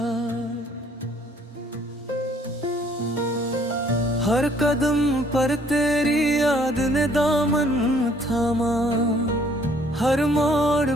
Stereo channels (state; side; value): normal; both; correlation 0.61